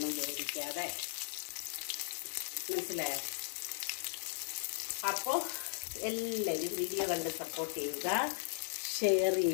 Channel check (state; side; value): silent; right; digital silence